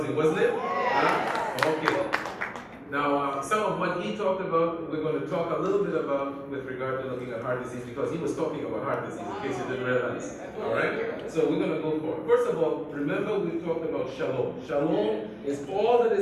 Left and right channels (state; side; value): identical; both; correlation 1.00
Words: wasn't it? Okay. Now, some of what he talked about, we're going to talk a little bit about with regard to looking at heart disease, because he was talking about heart disease, in case you didn't realize. All right? So we're going to go for it. First of all, remember we talked about shalom. Shalom is all that